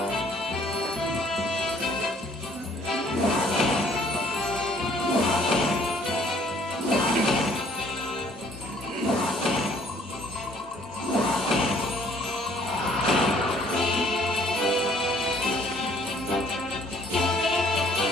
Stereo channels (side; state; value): both; normal; correlation 0.61